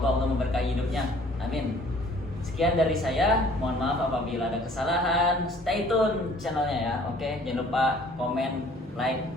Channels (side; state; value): both; normal; correlation 0.55